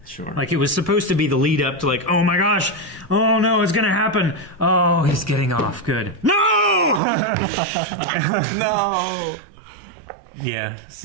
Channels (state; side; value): drops out; left; at 7.0 s